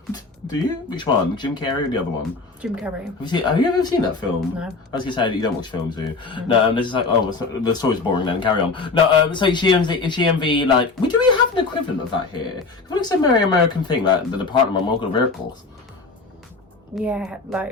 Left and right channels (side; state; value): right; quieter; 4.0 dB